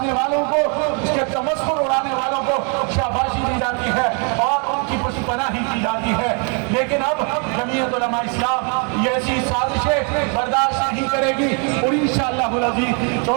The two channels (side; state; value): left; quieter; 37.8 dB